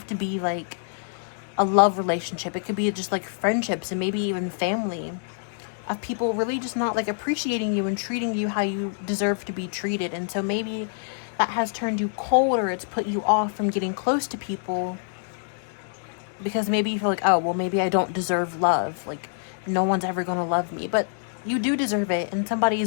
to be, like, a love relationship. It could be just like friendships and maybe even family, of people really just not like appreciating you and treating you how you deserve to be treated. And so maybe that has turned you cold, or it's put you off from getting close to people because maybe you feel like, oh, well, maybe I don't deserve love. Like, no one's ever going to love me. But you do deserve it, and somebody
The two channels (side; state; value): right; silent; digital silence